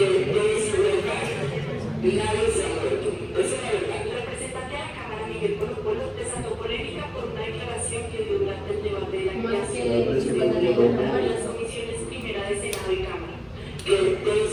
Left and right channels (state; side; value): identical; both; correlation 1.00